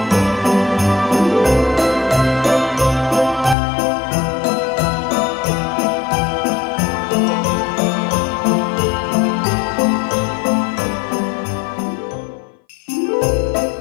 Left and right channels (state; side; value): drops out; right; at 3.6 s